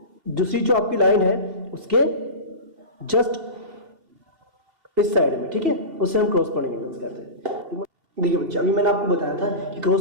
दूसरी जो आपकी लाइन है उसके जस्ट इस साइड में, ठीक है, उससे हम क्रॉसपोंडिंग एंगल्स कहते हैं। देखिए बच्चे, अभी मैंने आपको बताया था कि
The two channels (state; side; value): late; left; 2.7 ms